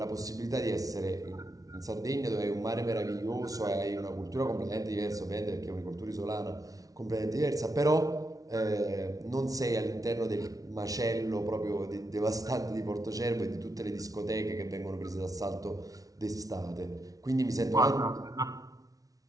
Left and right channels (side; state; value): left; late; 0.18 ms